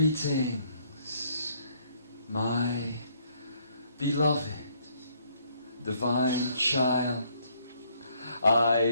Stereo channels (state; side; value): inverted; both; correlation -0.68